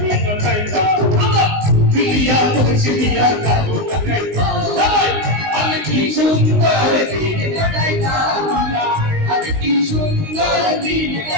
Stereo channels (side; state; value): left; late; 19 ms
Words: কাইতা, বিলিয়া মুর্শিদিয়ার কাবু কাইতা, আমি কি সুন্দর দিন কাটাইতাম, আমি কি সুন্দর দিন